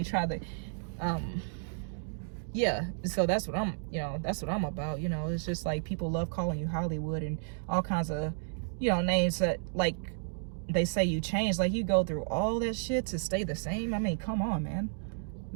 try to, yeah, so that's what I'm about. You know, it's just like, people love calling you Hollywood and all kinds of, you know, names that, like, they say you change, like, you go through all that shit to stay the same. I mean, come on, man.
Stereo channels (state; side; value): silent; left; digital silence